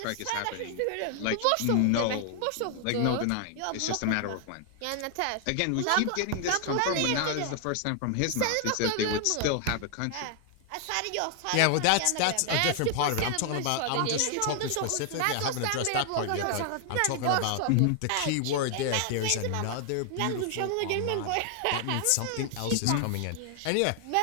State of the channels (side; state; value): both; different; correlation 0.00